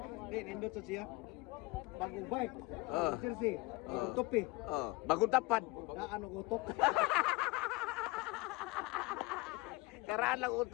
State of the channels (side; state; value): right; quieter; 22.2 dB